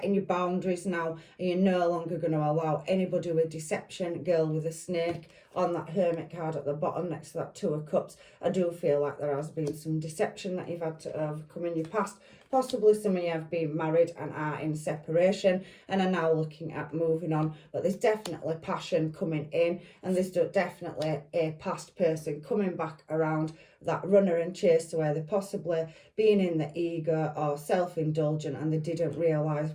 your boundaries now, and you're no longer going to allow anybody with deception. Girl with a snake on that Hermit card at the bottom next to that Two of Cups. I do feel like there has been some deception that you've had to overcome in your past. Possibly some of you have been married and are in separation and are now looking at moving on. But there's definitely passion coming in, and there's definitely a past person coming back around, that runner and chaser, where they're possibly being in the ego or self-indulgent and they didn't realise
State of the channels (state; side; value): identical; both; correlation 1.00